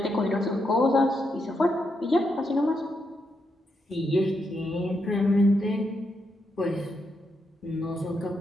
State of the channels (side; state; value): both; normal; correlation 0.82